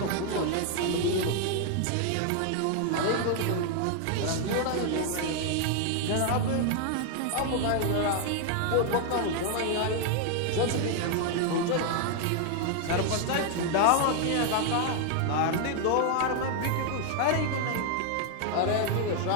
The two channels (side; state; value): both; different; correlation 0.00